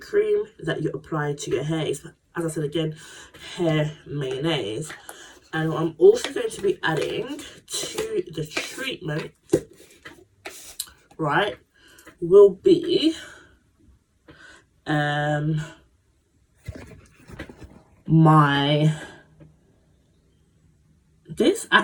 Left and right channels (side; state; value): both; identical; correlation 1.00